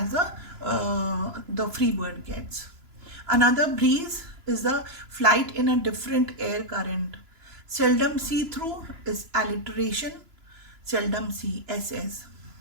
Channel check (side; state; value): left; late; 2.9 ms